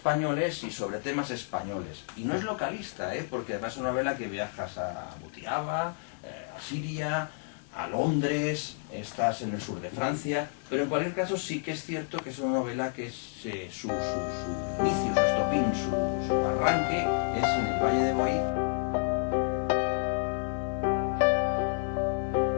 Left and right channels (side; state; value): right; silent; 58 dB below the other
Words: y sobre temas españoles. Y no es localista, porque además es una novela que viajas a Butiaba, a Siria, a Londres, estás en el sur de Francia, pero en cualquier caso sí que es cierto que es una novela que su inicio, su estopín, su arranque es en el Valle de Boí.